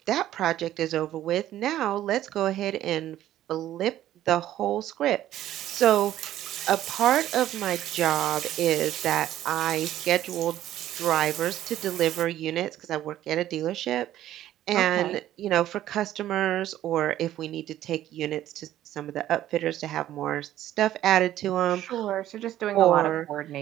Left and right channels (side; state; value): left; quieter; 12.9 dB